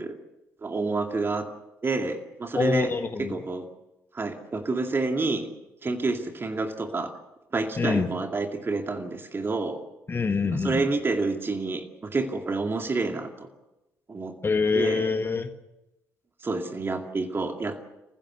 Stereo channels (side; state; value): both; normal; correlation 0.79